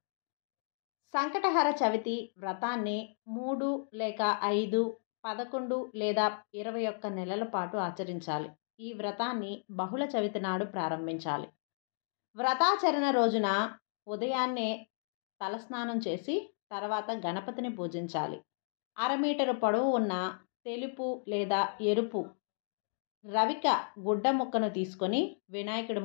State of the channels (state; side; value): silent; right; digital silence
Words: సంకటహర చవితి వ్రతాన్ని 3 లేక 5, 11 లేదా 21 నెలల పాటు ఆచరించాలి. ఈ వ్రతాన్ని బహుళ చవితి నాడు ప్రారంభించాలి. వ్రతాచరణ రోజున ఉదయాన్నే తలస్నానం చేసి తర్వాత గణపతిని పూజించాలి. 1/2 మీటరు పొడవు ఉన్న తెలుపు లేదా ఎరుపు రవిక గుడ్డ ముక్కను తీసుకొని వినాయకుడి